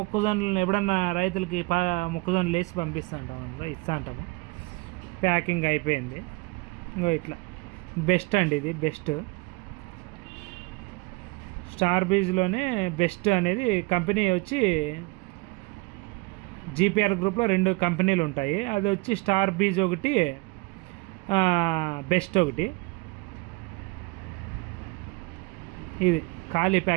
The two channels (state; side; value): quieter; left; 26.2 dB